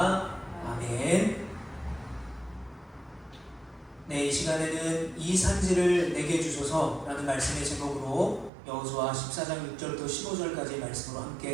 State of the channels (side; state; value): left; drops out; at 8.5 s